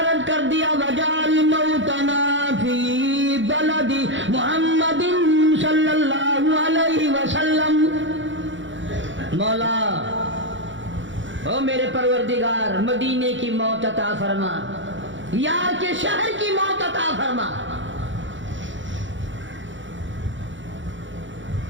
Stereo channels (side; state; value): left; late; 0.55 ms